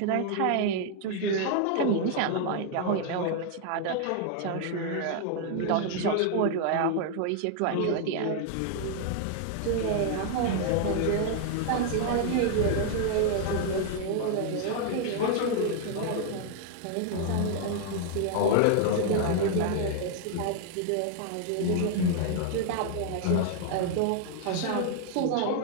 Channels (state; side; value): different; both; correlation 0.00